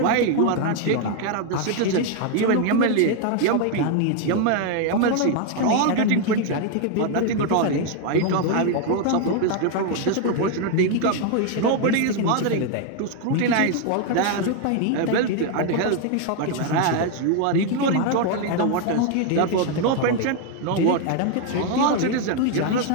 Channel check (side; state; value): both; different; correlation 0.01